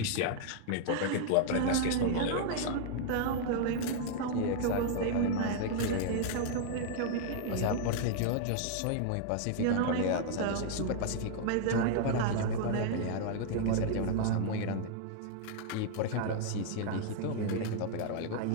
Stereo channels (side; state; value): both; different; correlation -0.01